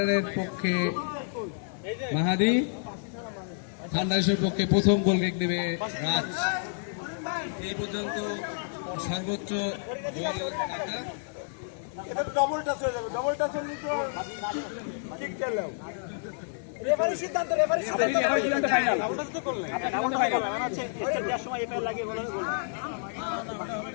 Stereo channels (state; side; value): silent; right; 55 dB below the other